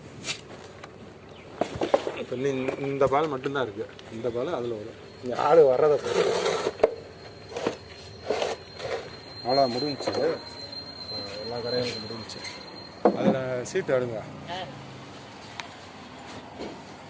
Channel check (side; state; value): both; identical; correlation 1.00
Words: இப்போ இந்த பால் மட்டும்தான் இருக்குது. இந்த பால் அதில் வரும். இங்கே ஆள் வர்றதை அவ்வளோ முடிஞ்சிச்சு. எல்லா கரையும் முடிஞ்சிச்சு. அதில் சீட்டு எடுங்க.